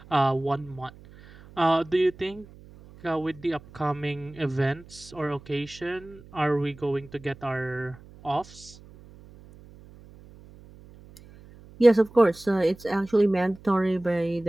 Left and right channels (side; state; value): right; noise; hum, 22 dB below the sound